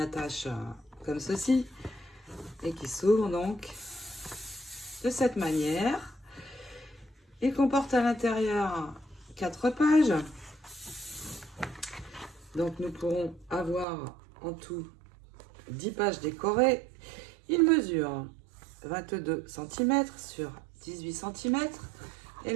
attache comme ceci, et qui s'ouvre donc de cette manière. Il comporte à l'intérieur 4 pages. Donc nous pourrons avoir en tout 10 pages décorées. Il mesure 22 cm sur 18 cm et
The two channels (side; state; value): left; drops out; at 13.9 s